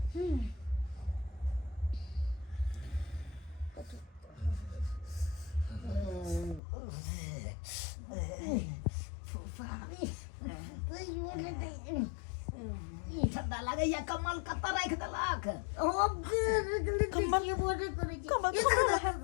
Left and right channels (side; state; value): right; drops out; at 6.6 s